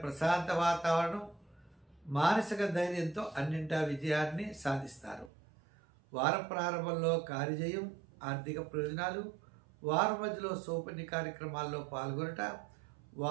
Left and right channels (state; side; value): drops out; left; at 5.3 s